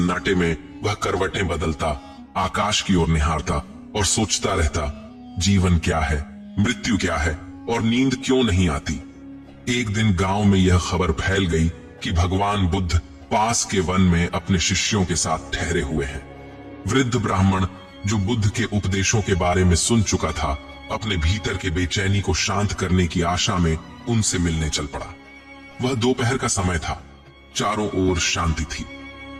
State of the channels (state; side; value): identical; both; correlation 1.00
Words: में वह करवटें बदलता, आकाश की ओर निहारता और सोचता रहता, जीवन क्या है, मृत्यु क्या है और नींद क्यों नहीं आती। एक दिन गांव में यह खबर फैल गई कि भगवान बुद्ध पास के वन में अपने शिष्यों के साथ ठहरे हुए हैं। वृद्ध ब्राह्मण जो बुद्ध के उपदेशों के बारे में सुन चुका था, अपने भीतर के बेचैनी को शांत करने की आशा में उनसे मिलने चल पड़ा। वह दोपहर का समय था, चारों ओर शांति थी।